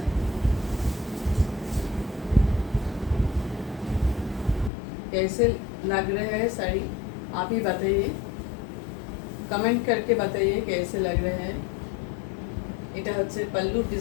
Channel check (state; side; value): drops out; right; at 4.7 s